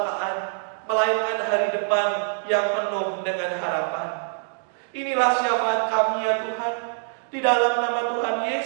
melainkan hari depan yang penuh dengan harapan. Inilah syafaat kami ya Tuhan, di dalam nama Tuhan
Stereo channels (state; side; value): silent; left; digital silence